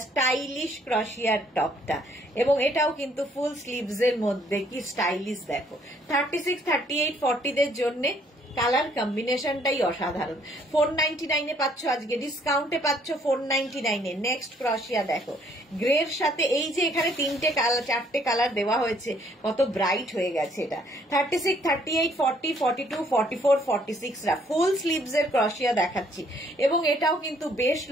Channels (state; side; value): normal; both; correlation 0.64